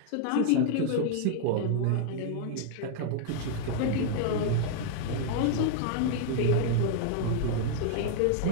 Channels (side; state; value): both; different; correlation -0.01